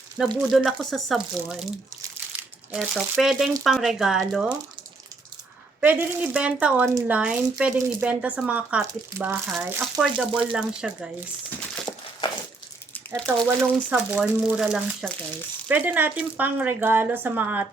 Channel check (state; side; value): quieter; left; 3.5 dB